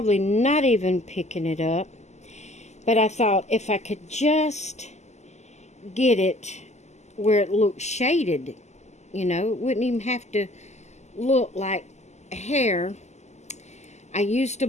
not even picking it up. But I thought if I could just get it where it looks shaded, you know, it wouldn't even have to look like hair. I used a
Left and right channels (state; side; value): late; right; 0.33 ms